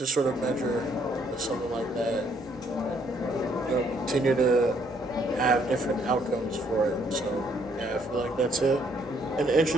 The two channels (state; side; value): normal; both; correlation 0.68